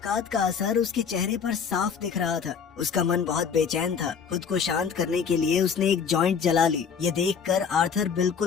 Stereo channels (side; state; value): right; quieter; 6.6 dB